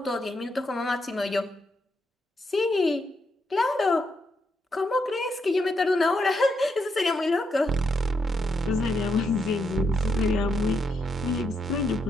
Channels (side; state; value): both; normal; correlation 0.80